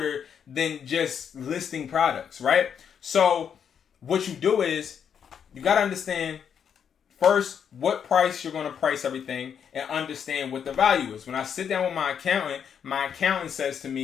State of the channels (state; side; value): quieter; right; 7.8 dB